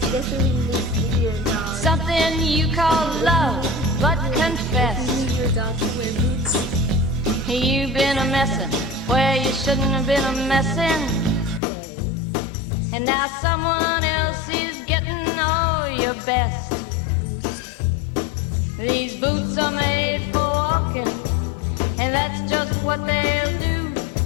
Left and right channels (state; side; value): drops out; right; at 11.6 s